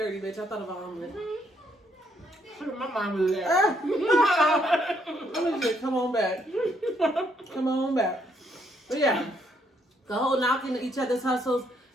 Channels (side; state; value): both; normal; correlation 0.72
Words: bitch. I thought about omelet. My mom was there. I'm just come on back. Come on back. But yeah, the whole knocking each other's hustles.